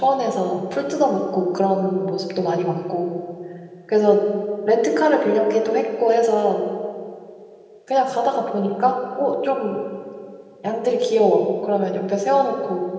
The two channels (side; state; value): both; identical; correlation 1.00